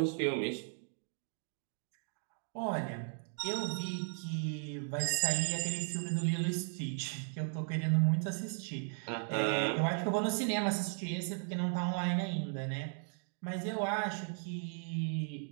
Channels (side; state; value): left; silent; 54 dB below the other